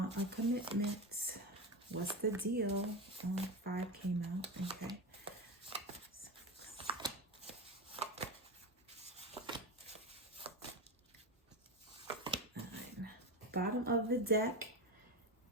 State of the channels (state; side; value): normal; both; correlation 0.19